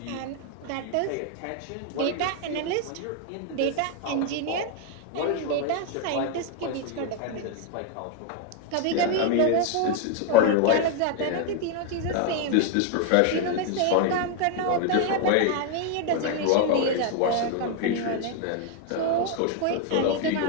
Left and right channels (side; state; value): both; different; correlation 0.00